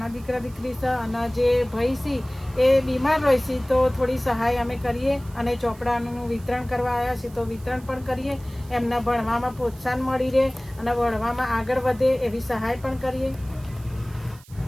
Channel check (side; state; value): right; noise; hiss, 24 dB below the sound